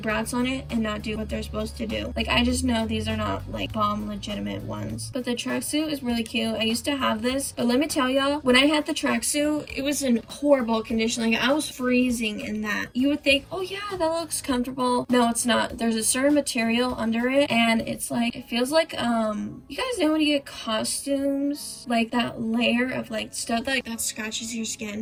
on it and not do what they're supposed to do. Like, I just know these are not like bomb legitimate ones. But the tracksuit is really cute. I used to have this, but let me tell y'all, when I had the tracksuit, it was in horrible condition. Like, I was freezing in that. You would think, oh yeah, that looks comfortable. No, it's not. There's a certain material under it, and it's like, it feels like you guys know when you get costumes, like that layer of like stuff that scratches your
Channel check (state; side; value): identical; both; correlation 1.00